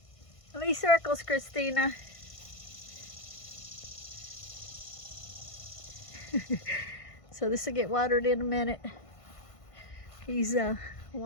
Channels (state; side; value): late; right; 1.5 ms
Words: How many circles, Christina? So this will get watered in a minute. He's